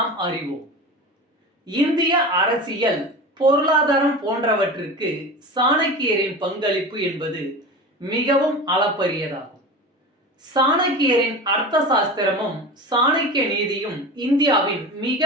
அறிவோம். இந்திய அரசியல், பொருளாதாரம் போன்றவற்றிற்கு சாணக்கியரின் பங்களிப்பு என்பது மிகவும் அளப்பரியதாகும். சாணக்கியரின் அர்த்த சாஸ்திரமும் சாணக்கிய நீதியும் இந்தியாவின்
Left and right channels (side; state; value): both; normal; correlation 0.30